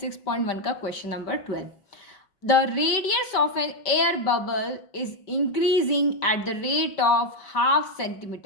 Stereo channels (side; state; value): right; late; 5.2 ms